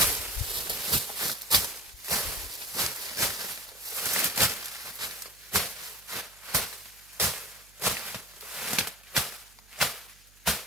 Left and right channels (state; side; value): noise; right; hum, 27 dB below the sound